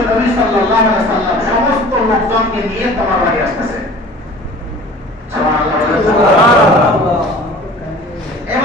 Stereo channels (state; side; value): normal; both; correlation 0.44